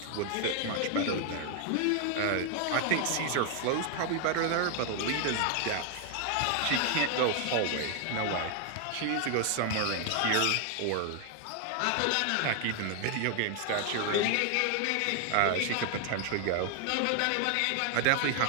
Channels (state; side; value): different; both; correlation 0.00